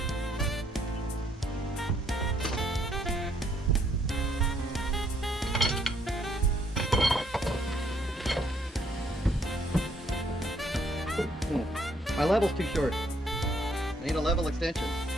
My level's too short. I need a level extension.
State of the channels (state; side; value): normal; both; correlation 0.68